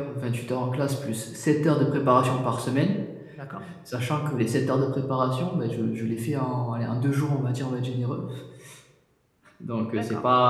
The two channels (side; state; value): both; identical; correlation 1.00